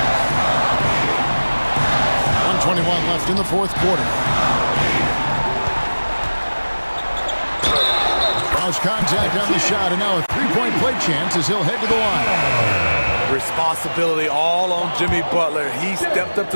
1:21 left in the fourth quarter. Cross contact on the shot, and now a 3-point play chance as he'll head to the line. Responsibility all on Jimmy Butler. He stepped up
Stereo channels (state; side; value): inverted; both; correlation -1.00